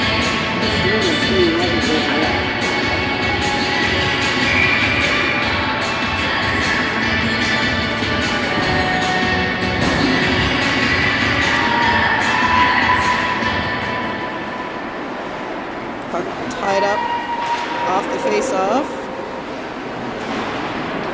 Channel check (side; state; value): both; identical; correlation 1.00